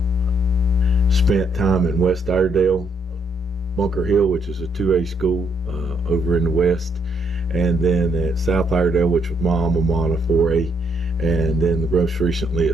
Spent time in West Iredale, Bunker Hill, which is a 2A school over in the West, and then at South Iredale, which was my alma mater, 4A, and then most recently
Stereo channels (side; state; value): both; normal; correlation 0.73